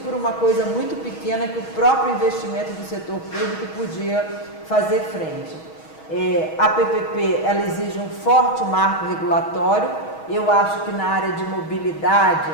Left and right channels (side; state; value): right; late; 6.3 ms